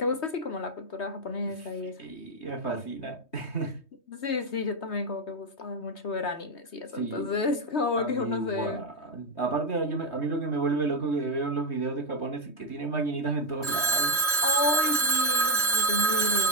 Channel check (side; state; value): right; late; 3.2 ms